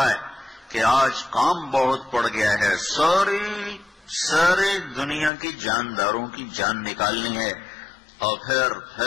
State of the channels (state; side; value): drops out; right; at 5.3 s